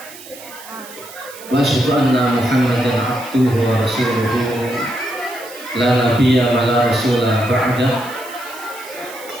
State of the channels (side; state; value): right; noise; hiss, 17 dB below the sound